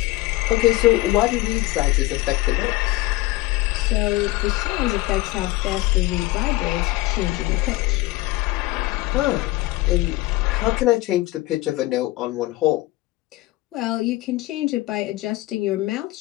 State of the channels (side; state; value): right; quieter; 19.1 dB